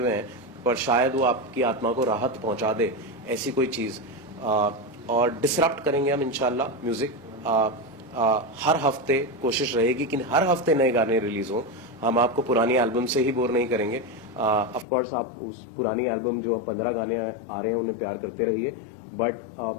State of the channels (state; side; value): drops out; right; at 14.9 s